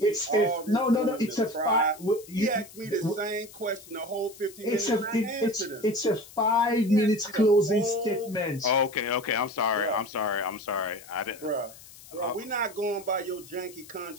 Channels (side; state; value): left; noise; hiss, 19 dB below the sound